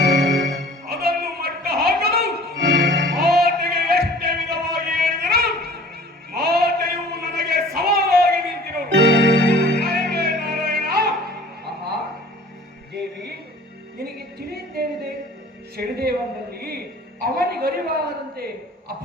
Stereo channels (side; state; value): both; normal; correlation 0.47